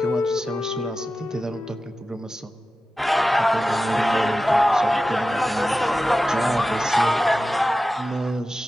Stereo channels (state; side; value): normal; both; correlation 0.94